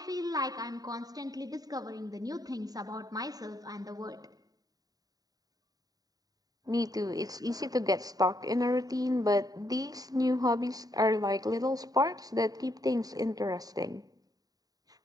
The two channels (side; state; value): left; late; 0.18 ms